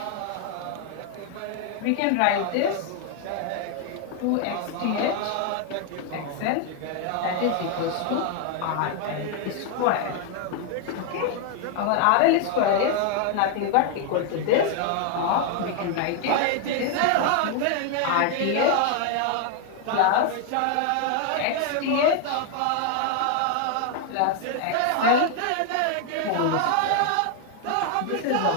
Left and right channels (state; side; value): different; both; correlation 0.00